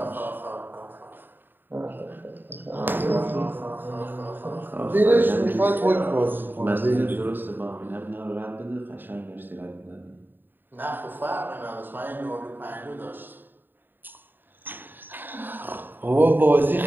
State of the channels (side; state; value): left; late; 0.093 ms